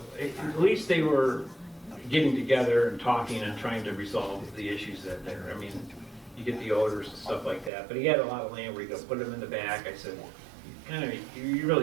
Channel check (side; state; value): left; drops out; at 7.7 s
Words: least they were getting together and talking and trying to resolve the issues that there. I mean, you get the odors and stuff like that, but he had a lot of land where you could put them in the back. I said, you